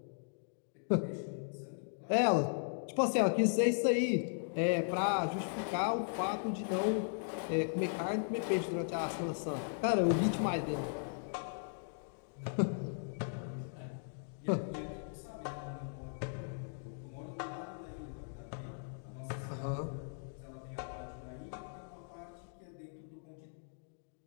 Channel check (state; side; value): silent; right; digital silence